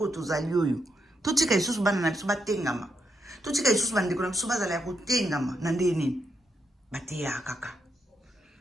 oyo tozali oyo totika lisusu bana na biso batengama totika lisusu bandeko na biso bazala ya kotengama na nde nini bateyaka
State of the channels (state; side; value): normal; both; correlation 0.79